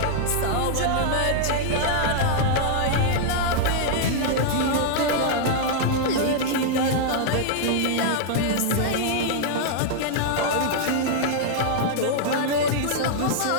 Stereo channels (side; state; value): both; different; correlation -0.01